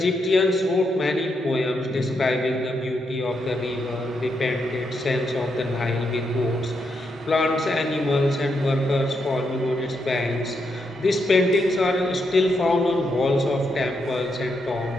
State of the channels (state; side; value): normal; both; correlation 0.81